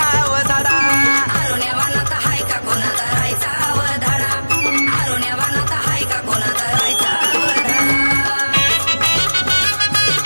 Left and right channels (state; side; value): inverted; both; correlation -1.00